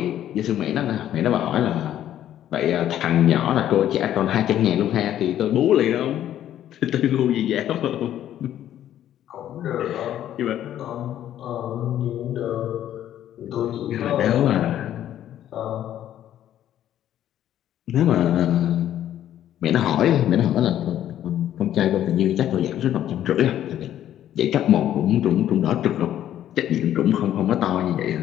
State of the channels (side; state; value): right; quieter; 11.5 dB